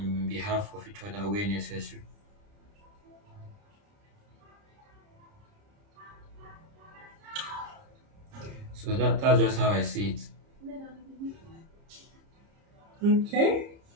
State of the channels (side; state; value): left; late; 30 ms